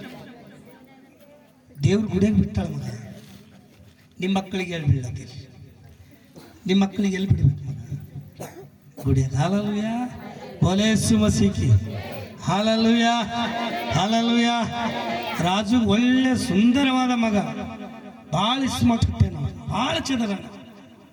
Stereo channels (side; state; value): both; identical; correlation 1.00